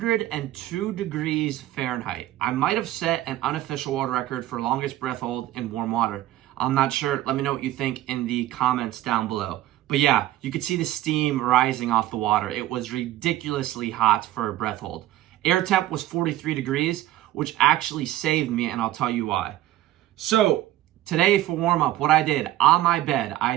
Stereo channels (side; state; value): left; quieter; 14.5 dB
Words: degrees Fahrenheit. I might have set an unofficial world record for longest breath hold in warm water. I'm not sure. Let me know what you think in the comments down below. But yeah, you could see the steam rising off the water. It was ridiculously hot for a breath hold. Air temp was 43 degrees, which actually saved me, and I'll tell you why. So today for warm-up, what I did on my bed, I